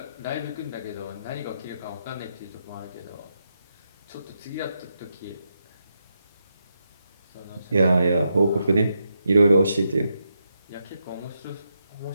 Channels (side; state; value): both; inverted; correlation -0.83